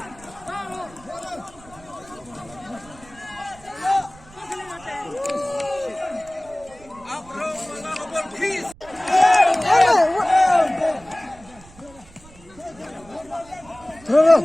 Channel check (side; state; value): right; noise; rumble, 23 dB below the sound